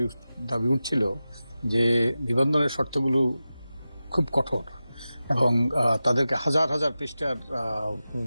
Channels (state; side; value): inverted; both; correlation -0.94